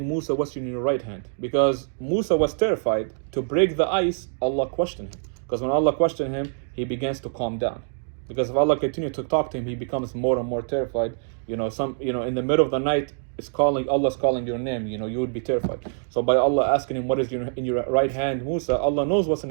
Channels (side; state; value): left; silent; digital silence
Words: Musa, what's in your right hand? Because Musa was terrified. To break the ice, Allah questioned him. Because when Allah questioned him, he begins to calm down. Because if Allah continues to talk to him, he becomes more and more terrified. In the middle of the night, Allah's calling your name, you would be terrified. So by Allah asking him, what is in your right hand, Musa, Allah knows what's in